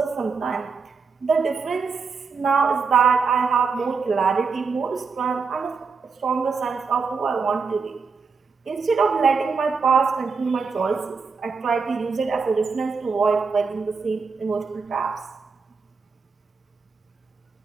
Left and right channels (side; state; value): left; quieter; 5.1 dB